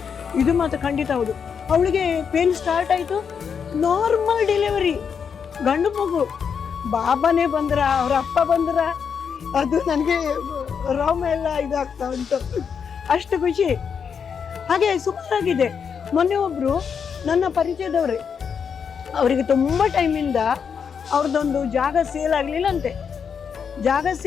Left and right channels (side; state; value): right; quieter; 6.7 dB